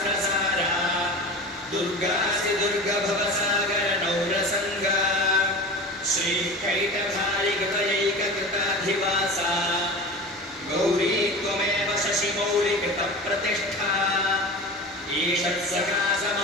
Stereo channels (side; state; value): both; normal; correlation 0.32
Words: दुर्गासि दुर्गभवसागरनौरसङ्गा श्रीकैटभारिकृतयैककृताधिवासा गौरी त्वमेव शशिमौलिकृतप्रतिष्ठा